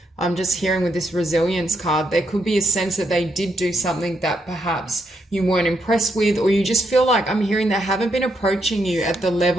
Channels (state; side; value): normal; both; correlation 0.77